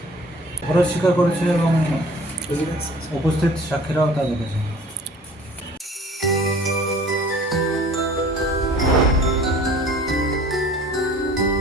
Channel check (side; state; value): both; normal; correlation 0.49